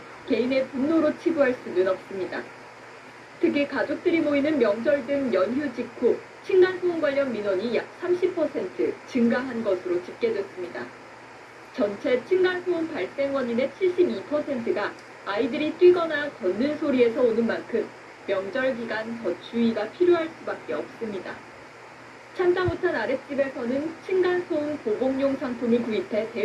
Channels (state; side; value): identical; both; correlation 1.00